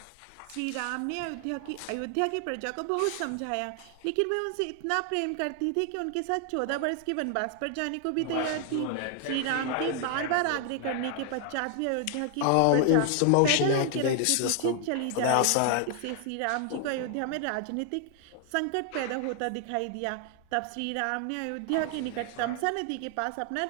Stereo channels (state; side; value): different; both; correlation 0.00